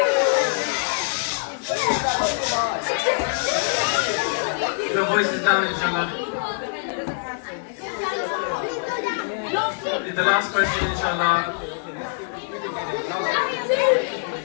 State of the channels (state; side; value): silent; right; digital silence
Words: Your voice is down, inshallah. The last question, inshallah.